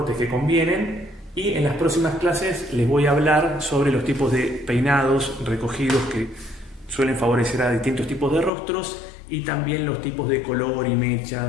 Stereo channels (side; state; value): right; drops out; at 8.5 s